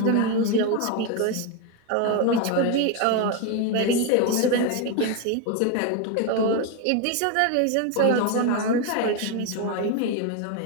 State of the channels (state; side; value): different; both; correlation 0.02